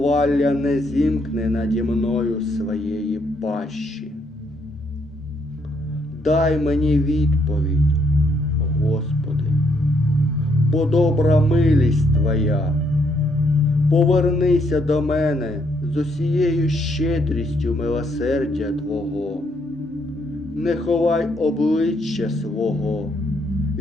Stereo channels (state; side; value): normal; both; correlation 0.72